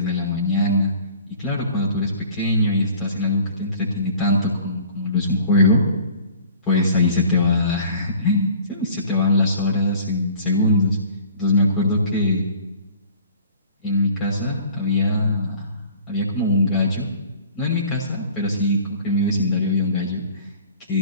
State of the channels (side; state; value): both; inverted; correlation -0.48